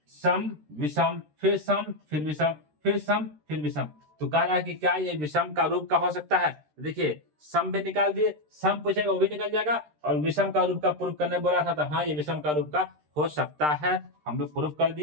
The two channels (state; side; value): late; left; 13 ms